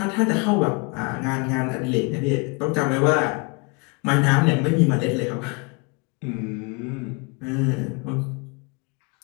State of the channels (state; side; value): quieter; right; 31.3 dB